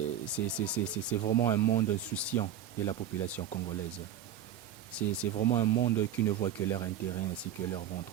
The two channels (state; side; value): quieter; left; 9.9 dB